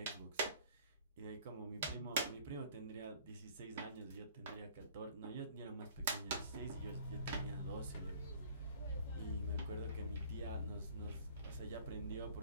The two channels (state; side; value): inverted; both; correlation -0.52